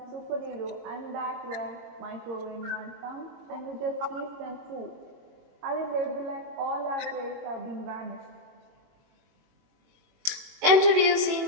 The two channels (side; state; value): left; late; 21 ms